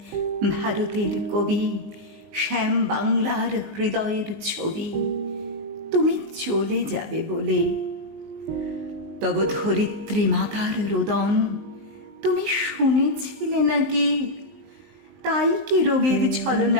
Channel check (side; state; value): left; late; 19 ms